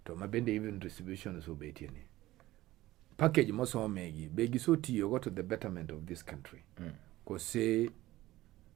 To mabende even distribution so betieni. Package mosomegi begi so tiyo to the betterment of this country. Cause say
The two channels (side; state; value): left; quieter; 16.6 dB